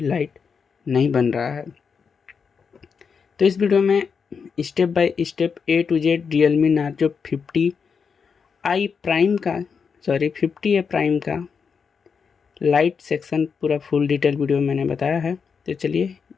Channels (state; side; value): quieter; right; 5.9 dB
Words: नहीं बन रहा है। तो इस वीडियो में step by step A to Z Realme Narzo 50i prime का 50A प्राइम का लाइट सेक्शन पूरा फुल डिटेल वीडियो मैंने बताया है। तो चलिए